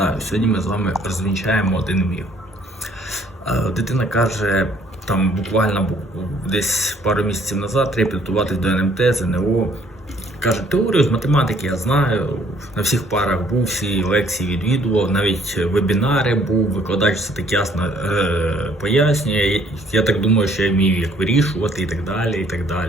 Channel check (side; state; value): both; normal; correlation 0.61